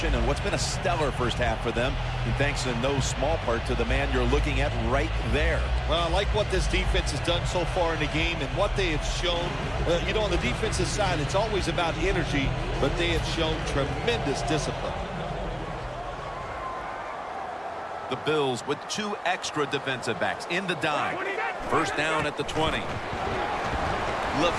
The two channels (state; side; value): identical; both; correlation 1.00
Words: and what's been a stellar first half for them, and thanks in no small part to the man you're looking at right there. Well, I like what this defense has done so far in the game and what they have shown. You know, on the defensive side, it's always about energy, but they have shown tremendous discipline. The Bills with 2 extra defensive backs in the dime. First down at the 20.